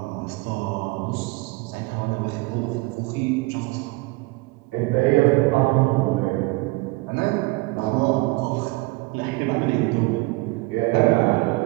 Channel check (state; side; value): quieter; left; 23.5 dB